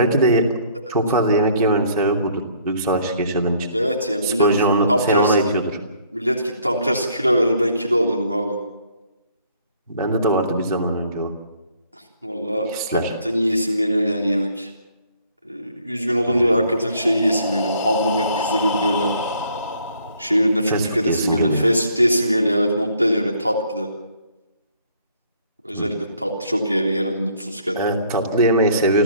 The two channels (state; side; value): inverted; both; correlation -0.62